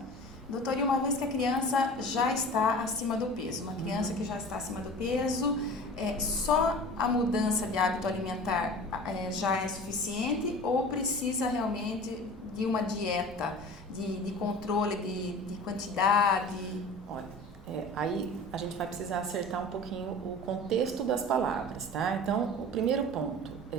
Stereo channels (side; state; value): both; normal; correlation 0.38